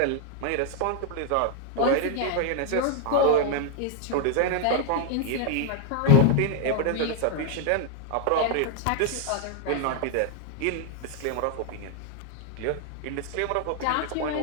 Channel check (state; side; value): different; both; correlation 0.00